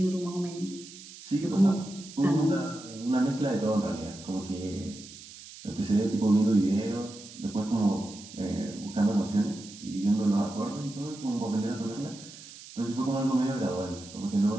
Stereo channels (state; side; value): noise; right; hiss, 16 dB below the sound